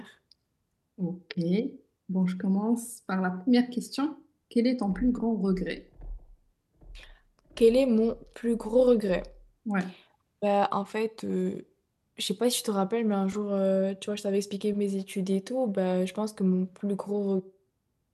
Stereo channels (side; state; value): both; identical; correlation 1.00